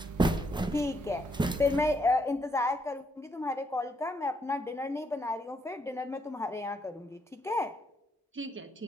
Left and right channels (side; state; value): both; normal; correlation 0.75